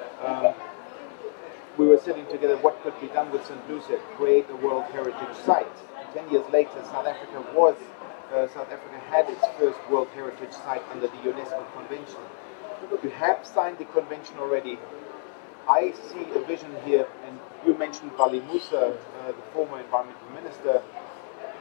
we were sitting together, what could be done with St. Lucia, create a World Heritage Site. 10 years later, South Africa had its first World Heritage Site under the UNESCO Convention. You have signed the convention already. I see a vision here, and you mentioned Vali Musa, the former environmental minister.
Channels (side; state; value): right; silent; digital silence